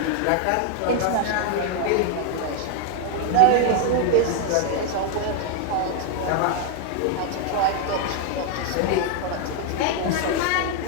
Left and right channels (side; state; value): both; different; correlation 0.00